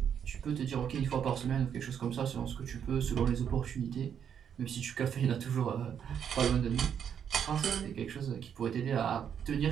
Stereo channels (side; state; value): left; quieter; 8.3 dB